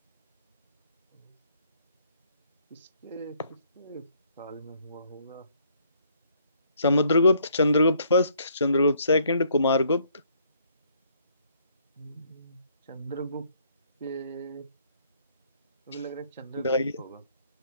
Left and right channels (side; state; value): both; inverted; correlation -0.66